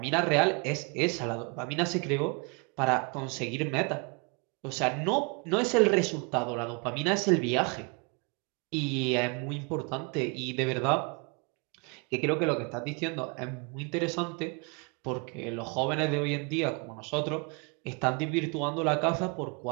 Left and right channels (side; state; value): left; quieter; 32.7 dB